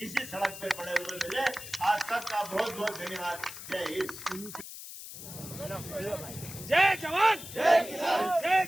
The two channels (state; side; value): noise; left; hiss, 12 dB below the sound